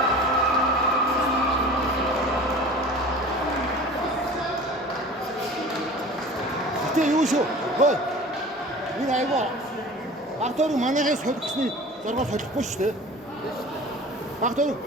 Юу шүү. Хөөе. Энэ айгаа. Багтаар манайхаа солихсны зоргоо солихгүй шүү дээ. Багтаар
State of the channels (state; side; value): normal; both; correlation 0.41